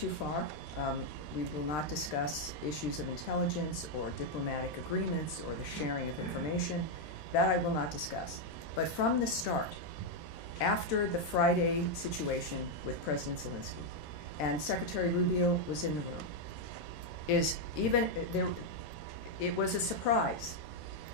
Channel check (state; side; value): late; right; 13 ms